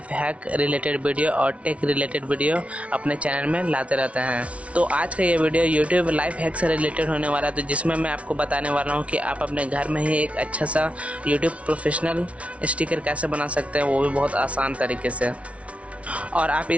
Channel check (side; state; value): left; late; 0.063 ms